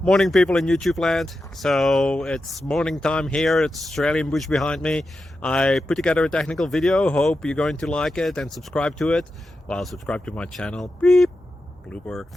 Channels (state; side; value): normal; both; correlation 0.90